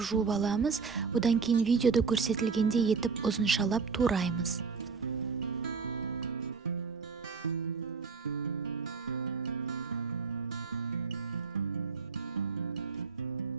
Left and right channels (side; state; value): left; quieter; 5.1 dB